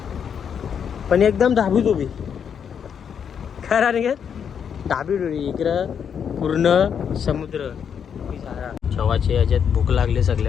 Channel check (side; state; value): right; quieter; 7.6 dB